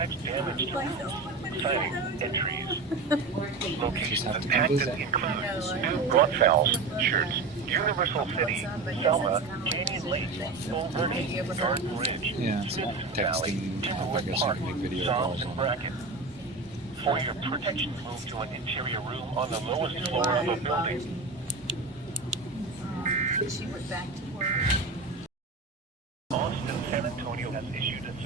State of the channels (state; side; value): quieter; left; 3.7 dB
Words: damage to roofs, siding, and trees. Locations impacted include New Braunfels, Shirts, Universal City, Selma, Canyon Lake, Bull Verde, Garden Ridge, Yeah, it's not Valley, texting. I guess I Park, can make video Psalms, calls and on it. Bracken. For your protection, move to an interior room on the lowest floor of a building. She went back to work. Austin, San Antonio has issued